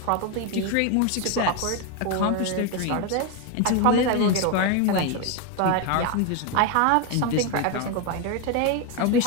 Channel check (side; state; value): both; different; correlation 0.02